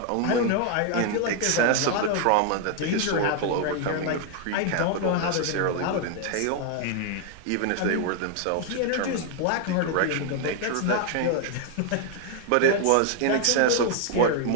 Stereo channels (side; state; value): both; different; correlation 0.00